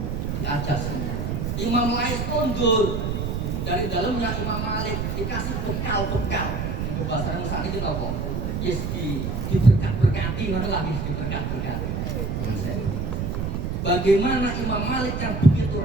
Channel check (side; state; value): right; noise; rumble, 2 dB below the sound